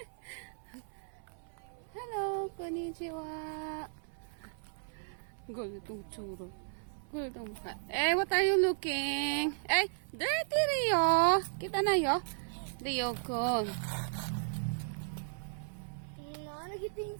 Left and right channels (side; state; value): left; silent; 54 dB below the other